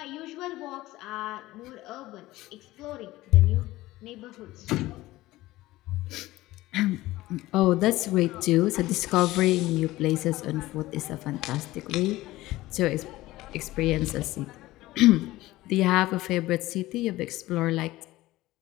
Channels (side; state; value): right; quieter; 17.5 dB